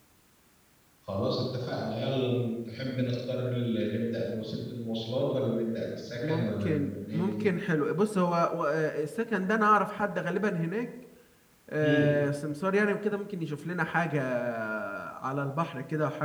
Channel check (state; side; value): identical; both; correlation 1.00